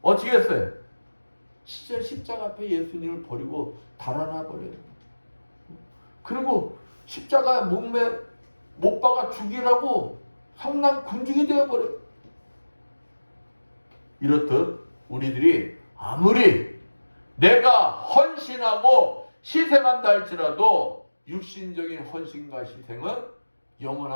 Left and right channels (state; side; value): inverted; both; correlation -1.00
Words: 어떻게 했어요? 십자가 앞에 예수님을 버리고 달아나 버려요. 그리고 십자가 몸에 못 박아 죽이라고 성난 군중이 되어버려요. 이렇듯 우리들이 아무리 내가 헌신하고 희생한다 할지라도 육신적인 헌신과 희생은